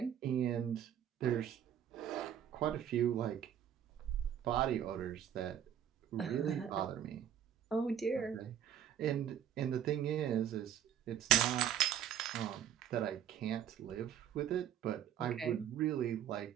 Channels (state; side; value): quieter; left; 9.8 dB